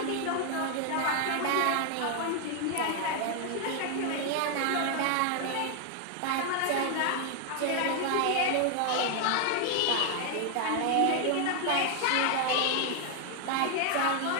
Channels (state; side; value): different; both; correlation 0.01